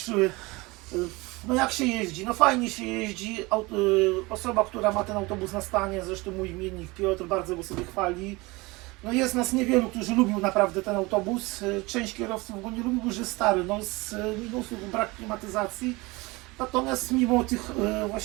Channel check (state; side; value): quieter; left; 23.6 dB